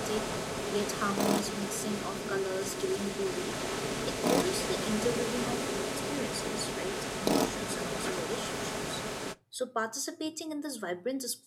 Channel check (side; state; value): both; identical; correlation 1.00